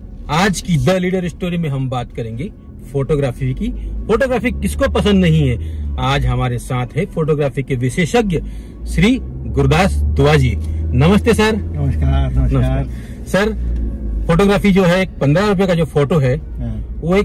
आज की the leader story में हम बात करेंगे फोटोग्राफी की। फोटोग्राफी किसको पसंद नहीं है। आज हमारे साथ है फोटोग्राफी के विशेषज्ञ श्री गुरदास दुआ जी। नमस्ते सर। नमस्कार। सर, फोटोग्राफी जो है 15 रुपए का जो फोटो है वो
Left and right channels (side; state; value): both; identical; correlation 1.00